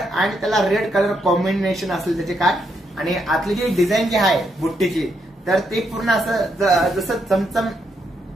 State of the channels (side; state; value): both; normal; correlation 0.78